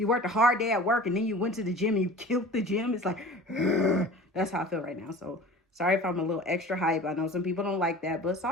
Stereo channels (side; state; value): both; normal; correlation 0.41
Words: worked a hard day at work and then you went to the gym and you killed the gym. It's like, that's how I feel right now. So sorry if I'm a little extra hype. I know some people don't like that, but